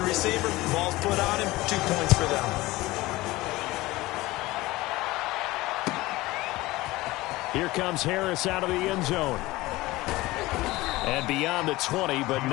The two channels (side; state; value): right; quieter; 19.4 dB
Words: receiver, ball's put on him, 2 points for them. Here comes Harris out of the end zone. And beyond the 20, but